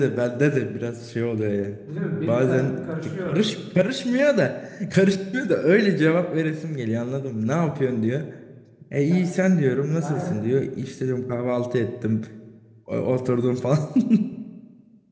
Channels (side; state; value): both; identical; correlation 1.00